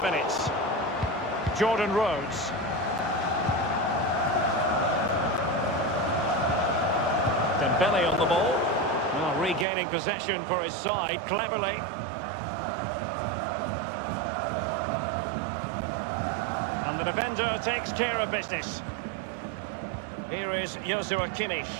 Jordan Rhodes. Dembele on the ball. Now regaining possession for his side cleverly. And the defender takes care of business. Here is Joshua Kimmich.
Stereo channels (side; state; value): left; drops out; at 9.7 s